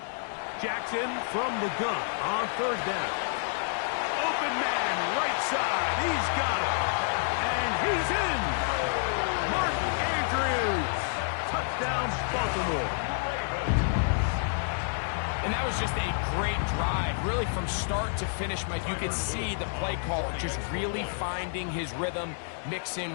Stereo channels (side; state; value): right; silent; digital silence